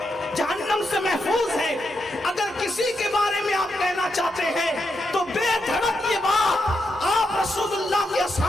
جہنم سے محفوظ ہے، اگر کسی کے بارے میں آپ کہنا چاہتے ہیں تو بے دھڑک یہ بات آپ رسول اللہ کے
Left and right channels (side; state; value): both; normal; correlation 0.84